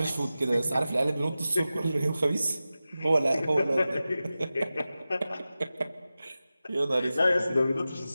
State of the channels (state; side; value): inverted; both; correlation -0.94